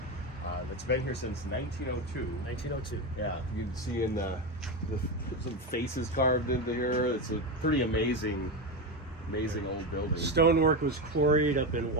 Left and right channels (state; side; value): normal; both; correlation 0.15